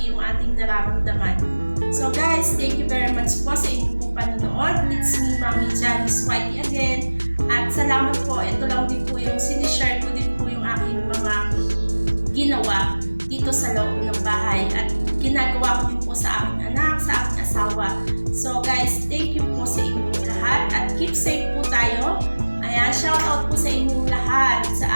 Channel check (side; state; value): both; inverted; correlation -1.00